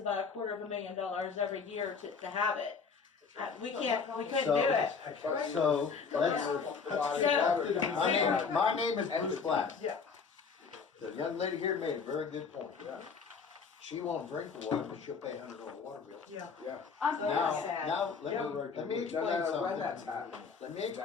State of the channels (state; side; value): quieter; right; 5.5 dB